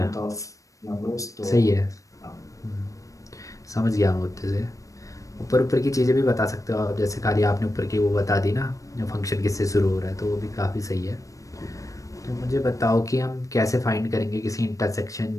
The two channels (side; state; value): right; late; 0.16 ms